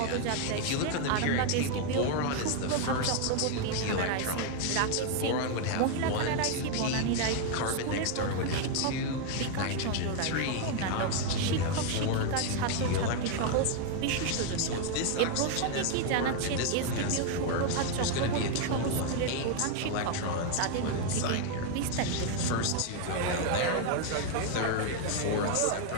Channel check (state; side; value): different; both; correlation 0.01